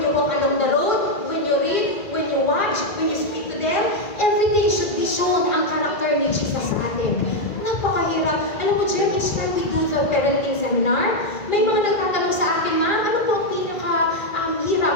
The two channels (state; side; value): late; right; 1.9 ms